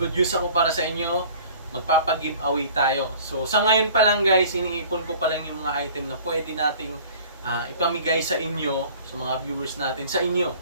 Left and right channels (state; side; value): inverted; both; correlation -0.48